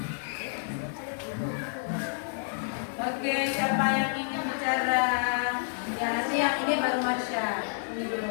Oke, siapa yang ingin bicara? Ya, nanti yang ini baru Marsha. Ini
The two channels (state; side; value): silent; right; 58 dB below the other